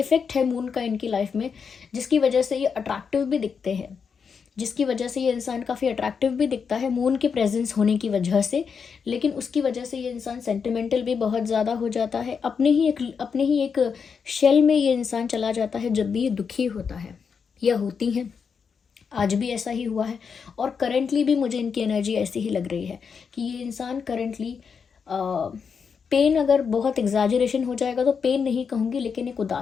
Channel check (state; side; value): quieter; right; 6.1 dB